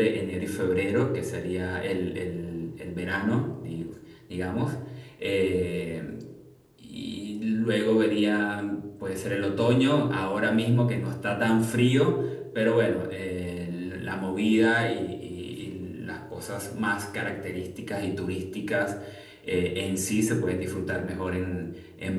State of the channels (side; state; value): both; identical; correlation 1.00